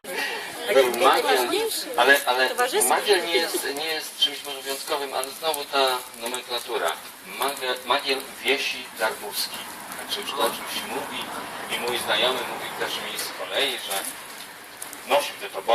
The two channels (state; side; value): identical; both; correlation 1.00